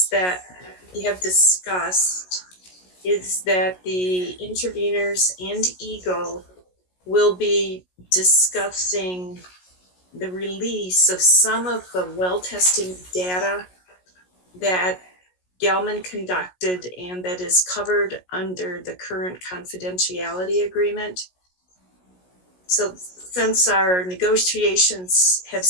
that we have discussed is that the interveners and Eagle will be discussing the release of some of the well testing data that Gelman conducted and that is covered under the current confidentiality agreement. So since our negotiations have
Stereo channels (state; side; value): late; right; 16 ms